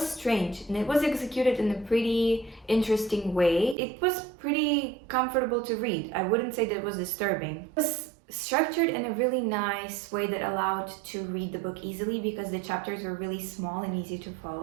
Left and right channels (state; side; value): drops out; left; at 3.8 s